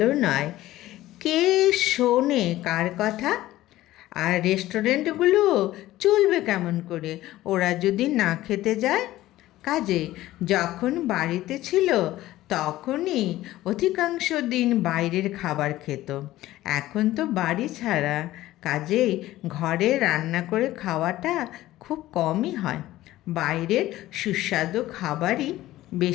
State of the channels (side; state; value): right; quieter; 15.7 dB